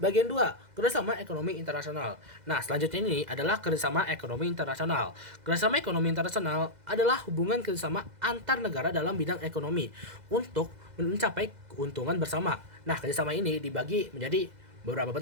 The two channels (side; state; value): left; late; 2.0 ms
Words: 2, kerjasama ekonomi internasional. Nah, selanjutnya ini adalah kerjasama ekonomi internasional. Kerjasama ekonomi internasional adalah hubungan kerjasama antar negara dalam bidang ekonomi untuk mencapai keuntungan bersama. Nah, kerjasama ini dibagi menjadi beberapa